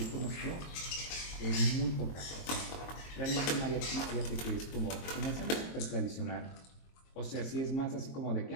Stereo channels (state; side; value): late; right; 22 ms